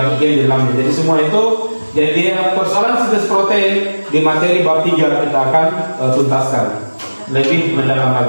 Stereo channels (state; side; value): inverted; both; correlation -1.00